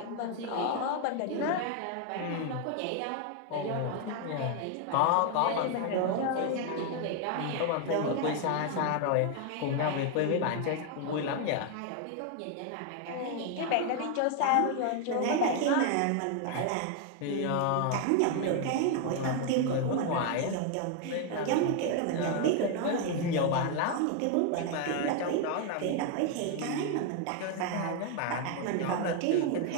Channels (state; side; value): different; both; correlation 0.00